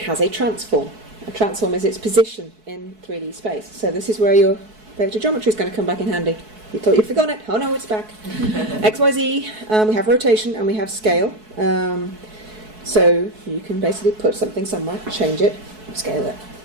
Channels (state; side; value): late; left; 4.6 ms